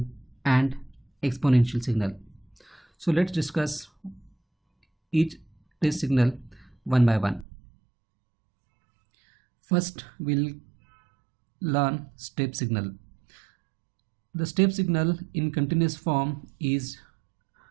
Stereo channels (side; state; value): left; drops out; at 7.5 s